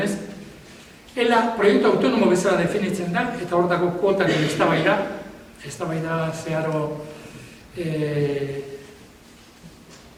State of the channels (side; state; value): both; identical; correlation 1.00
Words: Ela proiektu autonomo bezala definitzen da, eta hor dago kuotaren eztabaida zeharo